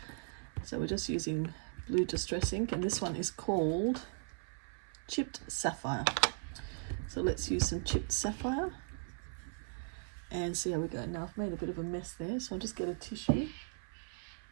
So we're just using blue distress ink, and this one is called Chipped Sapphire. So let's use some Chipped Sapphire and see how we go. Now I've made a bit of a mess there, so I'll just get a tissue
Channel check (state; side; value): silent; left; 53 dB below the other